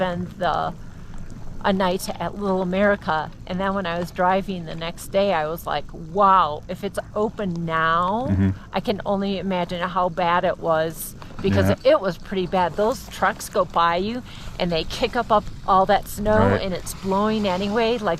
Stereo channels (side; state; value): both; identical; correlation 1.00